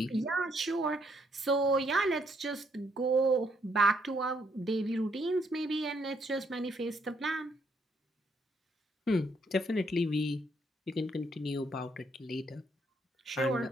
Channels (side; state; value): both; normal; correlation 0.72